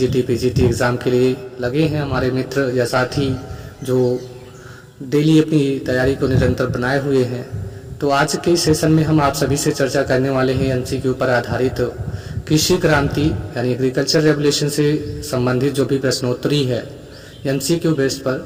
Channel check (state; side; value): identical; both; correlation 1.00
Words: पीजीटी एग्ज़ाम के लिए लगे हैं। हमारे मित्र या साथी जो डेली अपनी तैयारी को निरंतर बनाए हुए हैं। तो आज के सेशन में हम आप सभी से चर्चा करने वाले हैं एमसीक्यू पर आधारित कृषि क्रांति यानी एग्रीकल्चर रेवोल्यूशन से संबंधित जो भी प्रश्नोत्तरी है एमसीक्यू बेस्ड पर।